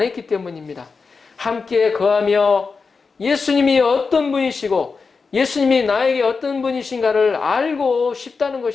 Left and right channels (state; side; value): quieter; right; 4.8 dB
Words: 때문입니다. 함께 거하며 예수님이 어떤 분이시고 예수님이 나에게 어떤 분이신가를 알고 싶다는